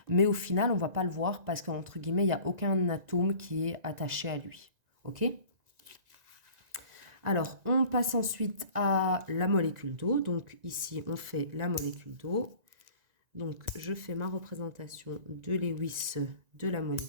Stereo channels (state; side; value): late; left; 1.9 ms